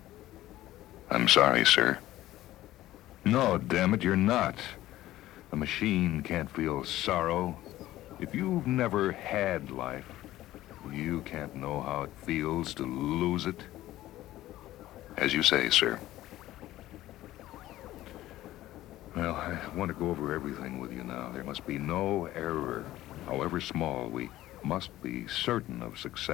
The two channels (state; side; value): quieter; right; 15.2 dB